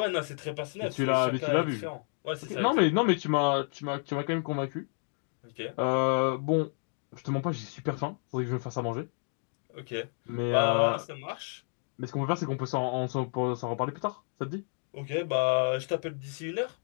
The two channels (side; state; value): right; silent; 57 dB below the other